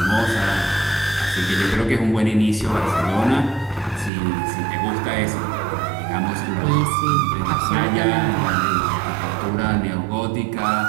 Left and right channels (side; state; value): left; drops out; at 4.1 s